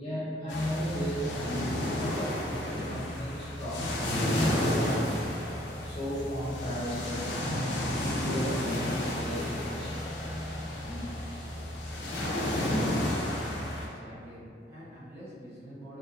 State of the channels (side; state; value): both; normal; correlation 0.61